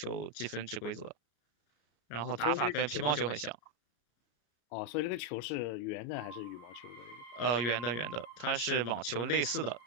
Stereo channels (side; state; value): right; late; 34 ms